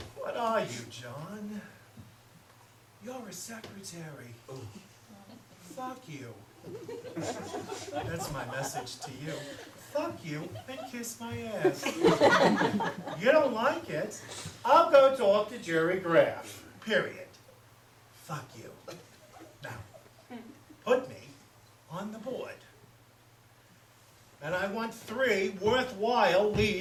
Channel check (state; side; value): identical; both; correlation 1.00